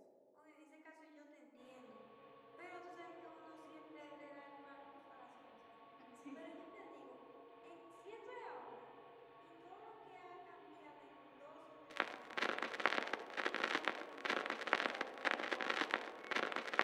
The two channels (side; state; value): both; identical; correlation 1.00